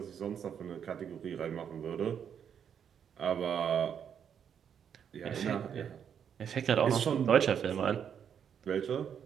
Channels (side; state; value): left; quieter; 8.1 dB